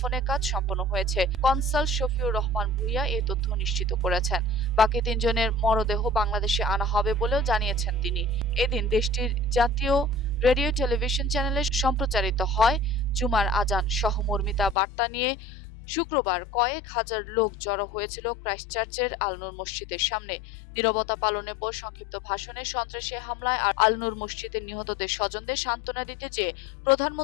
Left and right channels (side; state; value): right; drops out; at 14.8 s